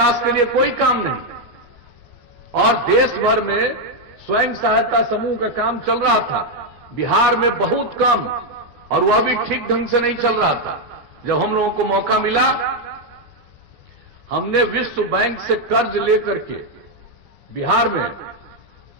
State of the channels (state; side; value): late; left; 14 ms